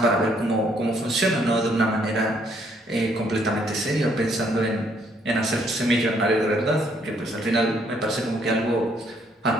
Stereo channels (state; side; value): normal; both; correlation 0.68